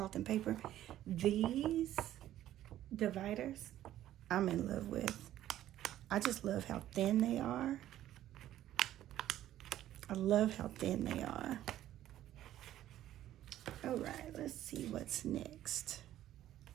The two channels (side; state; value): left; quieter; 12.9 dB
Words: and Paper? These dividers, I'm in love with. I just love how thin they are. I love how thin they are. All right, let's see what's next.